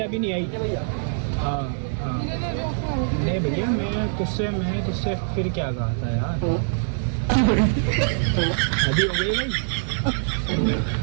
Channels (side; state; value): left; silent; digital silence